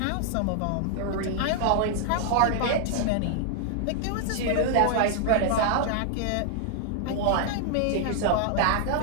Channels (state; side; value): different; both; correlation 0.00